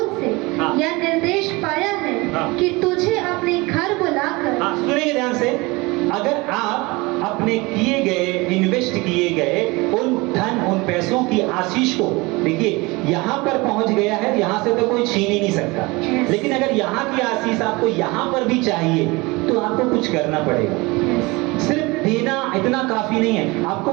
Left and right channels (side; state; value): left; quieter; 24.0 dB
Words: से हाँ, यह निर्देश पाया है, हाँ, कि तुझे अपने घर बुलाकर, हाँ, सुनिए ध्यान से, अगर आप अपने किए गए, इन्वेस्ट किए गए उन धन, उन पैसों की आशीष को, देखिए यहाँ पर पहुंच गया है, यहाँ से तो कोई छीन ही नहीं सकता, लेकिन अगर यहाँ की आशीष आपको यहाँ पर भी चाहिए तो आपको कुछ करना पड़ेगा। सिर्फ देना इतना काफी नहीं है। आपको